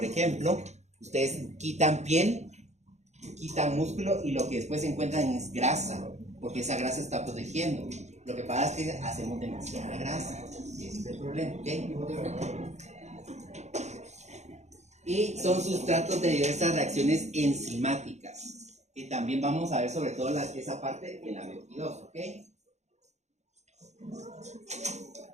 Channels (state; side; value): late; left; 0.33 ms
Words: ejemplo, ustedes quitan piel, quitan músculo y lo que después encuentran es grasa, porque esa grasa está protegiendo. Lo que pasa es que hacemos demasiada grasa, y ese es el problema, ¿ok? Y son sustratos de diversas reacciones enzimáticas, que también vamos a ver sobre todo esa parte en la 22, ¿ok?